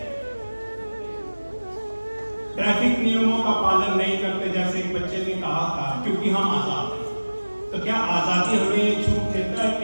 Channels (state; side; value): inverted; both; correlation -1.00